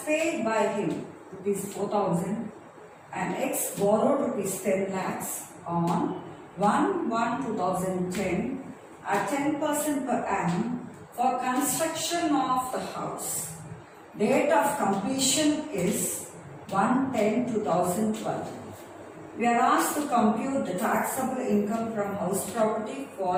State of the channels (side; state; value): both; identical; correlation 1.00